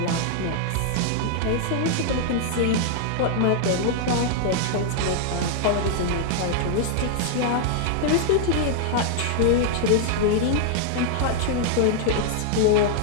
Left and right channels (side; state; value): both; different; correlation 0.00